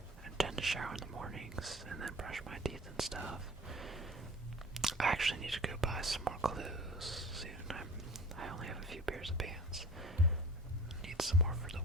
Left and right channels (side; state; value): both; normal; correlation 0.42